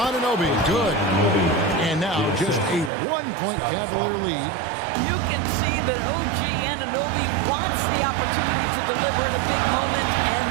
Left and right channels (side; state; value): left; drops out; at 2.9 s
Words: good. And now just a 1-point Cavalier lead. You can see that OG Anunoby wants the opportunity to deliver in a big moment and